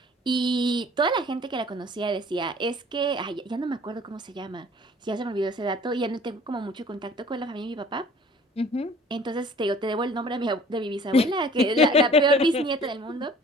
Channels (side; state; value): both; normal; correlation 0.51